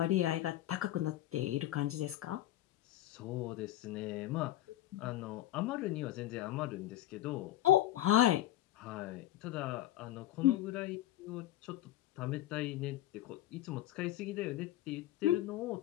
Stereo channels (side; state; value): right; quieter; 13.9 dB